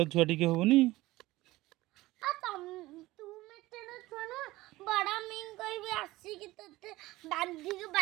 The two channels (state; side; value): quieter; left; 18.4 dB